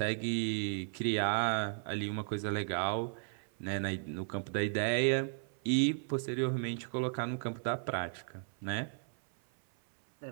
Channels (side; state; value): left; silent; 54 dB below the other